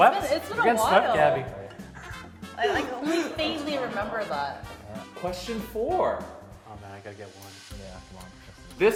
It's been We're a getting swept, while. Gabby. I only faintly remember that. Question 4. Oh man, I gotta get one. Yeah, come on.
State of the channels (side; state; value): both; identical; correlation 1.00